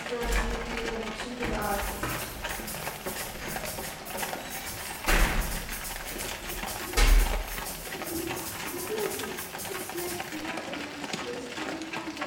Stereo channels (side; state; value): both; identical; correlation 1.00